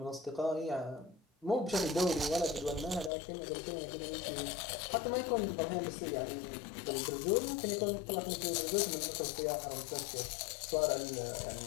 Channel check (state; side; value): drops out; right; at 3.1 s